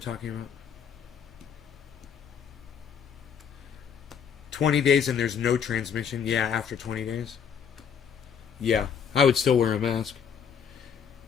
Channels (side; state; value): right; quieter; 7.3 dB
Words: about. 20 days and there's no transmission. Yeah, after 20 days. Yeah, I would still wear a mask.